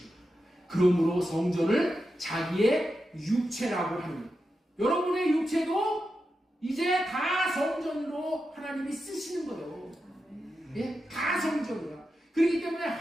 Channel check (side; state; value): both; normal; correlation 0.89